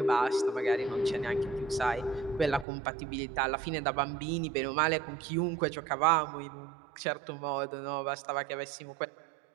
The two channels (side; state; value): left; drops out; at 2.7 s